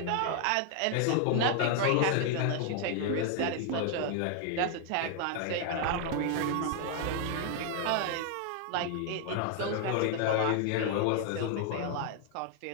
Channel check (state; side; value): different; both; correlation 0.00